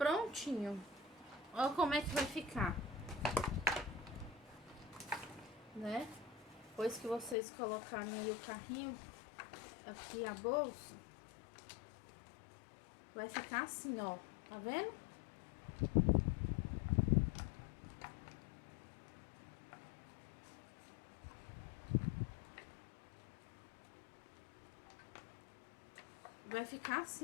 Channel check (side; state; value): right; drops out; at 7.4 s